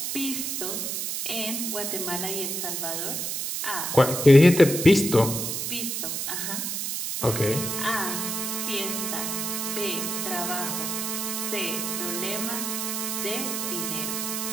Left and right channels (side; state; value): right; noise; hiss, 2 dB below the sound